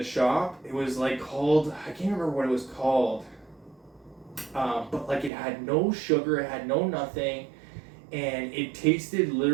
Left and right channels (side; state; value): left; drops out; at 5.3 s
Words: shop. It was like called, I can't remember what it was called, but like it had no sugar, it had no nothing, and it tasted